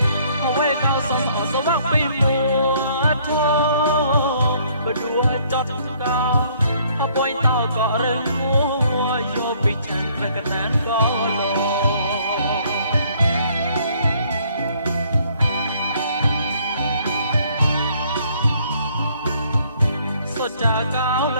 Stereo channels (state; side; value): inverted; both; correlation -0.63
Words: lồ huê cao sông họ sao bắc bi mùa thô và đua chót cao họ bôi tao có rơi mua vô bị chan về cái nán có lồ số cha cao